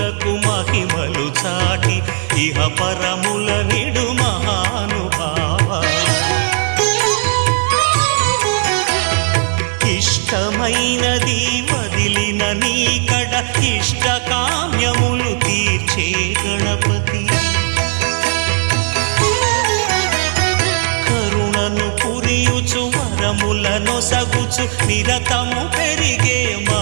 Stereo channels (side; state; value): left; silent; 61 dB below the other